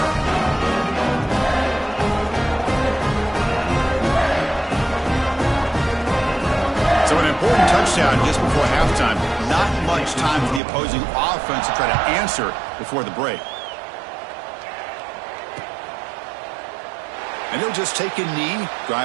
So an important touchdown just before halftime. Not much time for the opposing offense to try to answer before the break. And he'll just take a knee.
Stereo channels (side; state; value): left; drops out; at 10.6 s